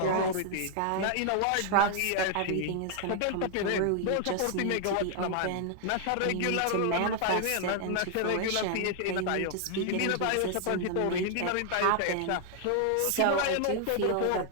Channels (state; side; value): different; both; correlation 0.00